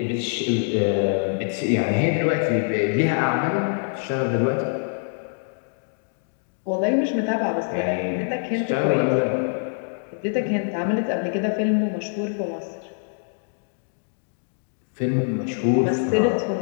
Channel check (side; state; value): right; silent; digital silence